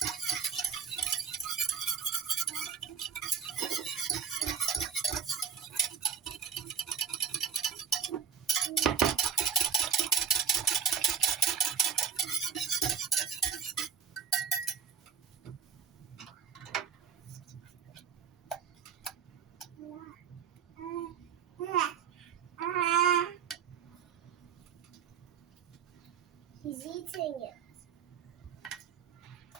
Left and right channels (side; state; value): left; quieter; 7.2 dB